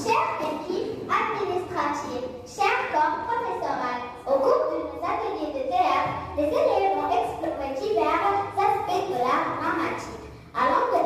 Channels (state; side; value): identical; both; correlation 1.00